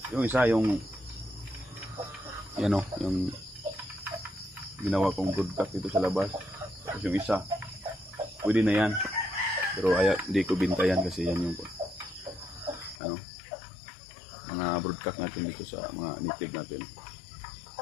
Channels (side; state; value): right; drops out; at 13.0 s